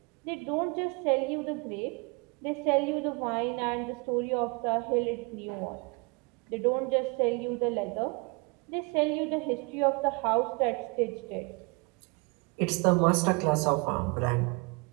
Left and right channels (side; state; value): left; quieter; 30.2 dB